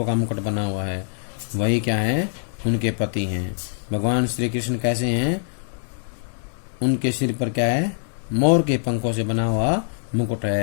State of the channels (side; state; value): right; silent; digital silence